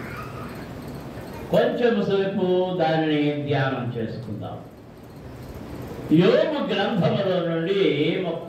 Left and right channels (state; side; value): identical; both; correlation 1.00